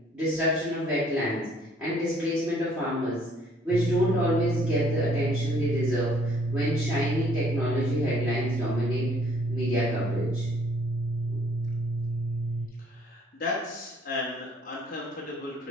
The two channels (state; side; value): normal; both; correlation 0.62